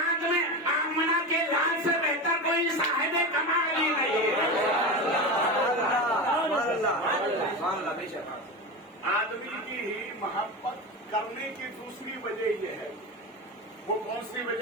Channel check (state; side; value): normal; both; correlation 0.22